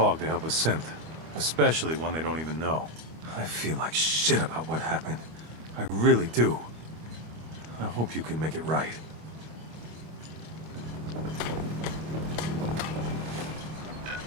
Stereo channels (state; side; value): late; left; 25 ms